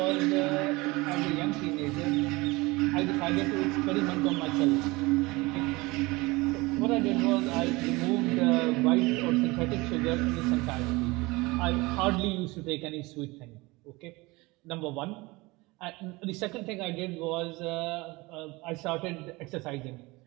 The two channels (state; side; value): quieter; left; 23.0 dB